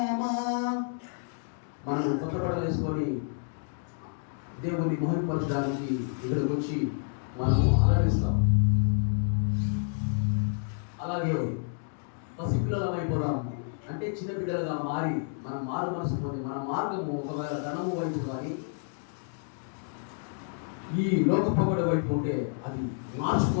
మనం కొత్త బట్టలు వేసుకొని దేవుని మహిమపరచడానికి ఇక్కడికి వచ్చి మనము అలరిస్తాం. అలాగే పసిపిల్లలం అయిపోదాం అంటే చిన్న బిడ్డలుగా మారి మన మారు మనసు పొంది మన మార్గము ఒకవేళ ధనము వైపు కానీ ఈ లోక పొగడ వైపు ఉంటే అది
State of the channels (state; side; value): silent; right; 57 dB below the other